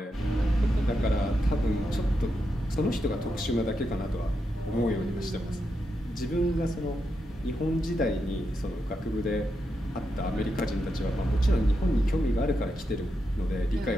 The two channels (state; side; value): normal; both; correlation 0.85